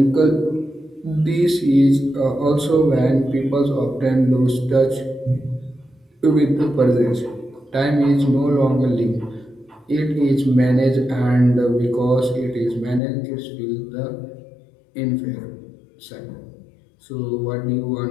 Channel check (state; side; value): drops out; right; at 13.0 s